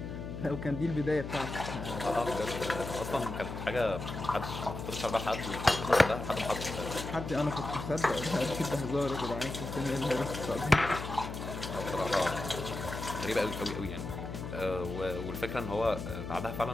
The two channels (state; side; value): noise; left; hum, 7 dB below the sound